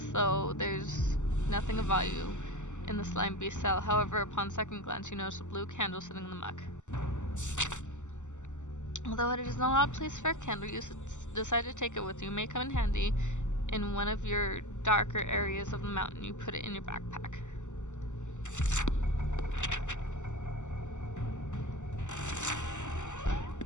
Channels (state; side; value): late; right; 0.84 ms